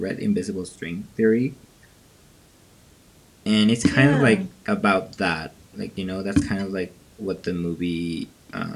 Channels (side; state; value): both; identical; correlation 1.00